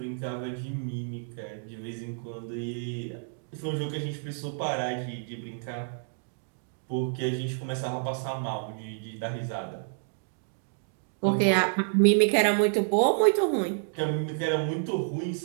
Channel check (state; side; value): silent; left; digital silence